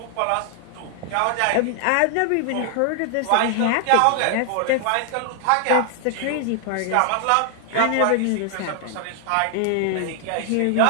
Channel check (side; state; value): both; different; correlation 0.00